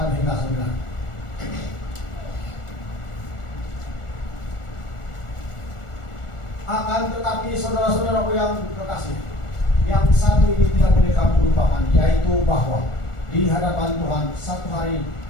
hingga 9. Akan tetapi saudara-saudaraku yang kekasih, yang satu ini tidak boleh kamu lupakan, yaitu bahwa di hadapan Tuhan satu hari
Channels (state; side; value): late; right; 1.4 ms